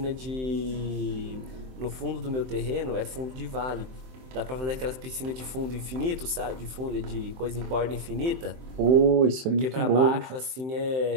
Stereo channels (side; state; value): left; late; 23 ms